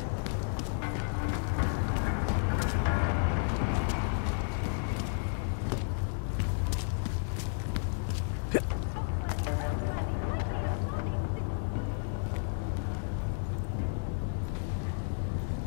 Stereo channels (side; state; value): right; silent; digital silence